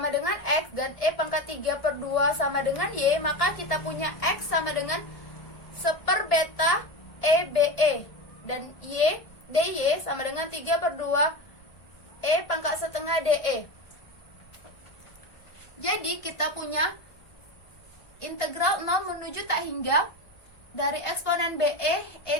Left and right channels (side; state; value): right; late; 1.6 ms